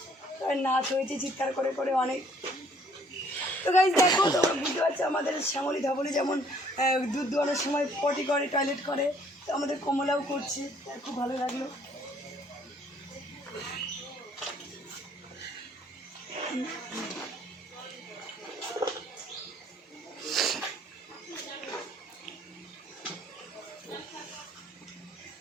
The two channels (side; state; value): both; normal; correlation 0.61